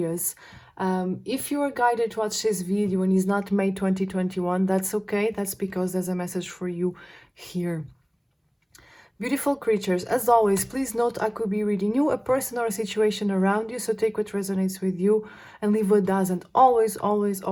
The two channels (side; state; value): both; identical; correlation 1.00